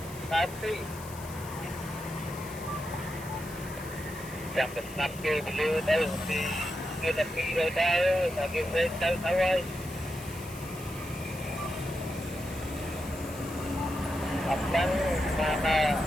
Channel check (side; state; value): left; noise; hiss, 16 dB below the sound